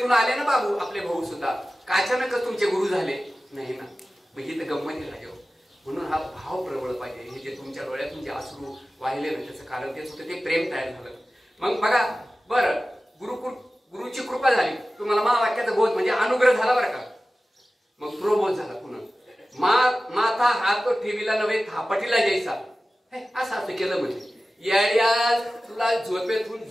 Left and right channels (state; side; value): normal; both; correlation 0.96